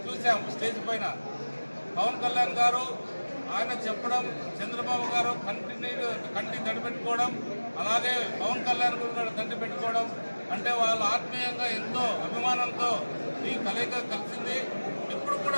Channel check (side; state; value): both; inverted; correlation -1.00